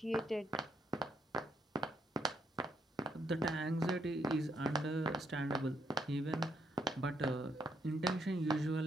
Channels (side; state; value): both; normal; correlation 0.76